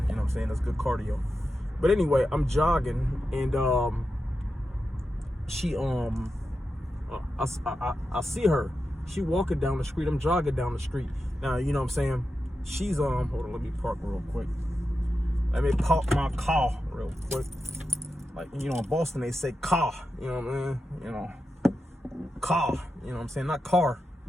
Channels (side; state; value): both; normal; correlation 0.89